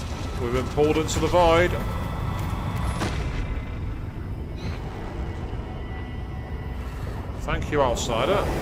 We've been pulled into the void. Thank you, outsider.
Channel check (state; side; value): identical; both; correlation 1.00